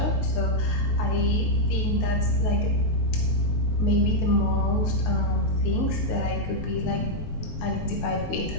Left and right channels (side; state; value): right; late; 19 ms